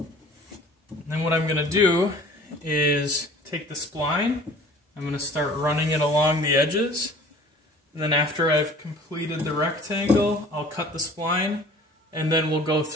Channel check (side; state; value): both; normal; correlation 0.47